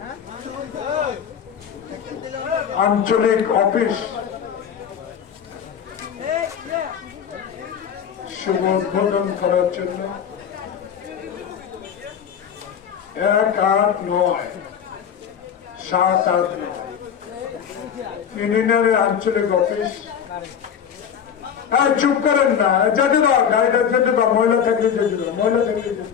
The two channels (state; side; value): quieter; right; 8.0 dB